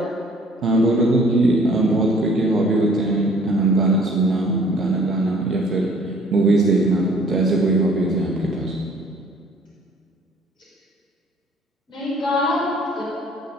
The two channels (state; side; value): normal; both; correlation 0.56